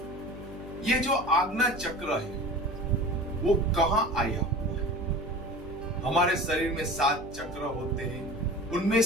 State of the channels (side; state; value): left; noise; hum, 14 dB below the sound